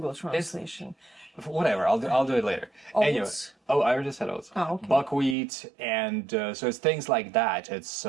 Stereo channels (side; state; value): left; drops out; at 5.4 s